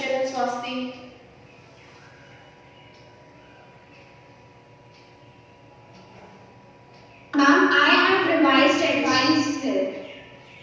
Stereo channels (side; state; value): both; identical; correlation 1.00